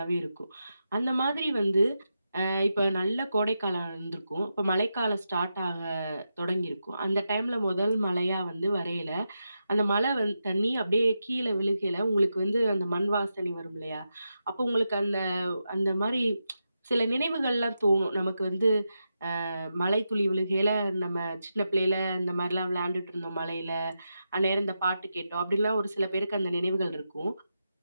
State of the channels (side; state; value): both; inverted; correlation -0.87